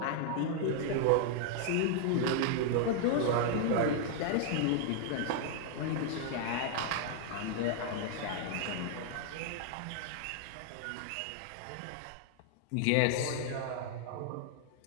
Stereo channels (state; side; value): different; both; correlation -0.01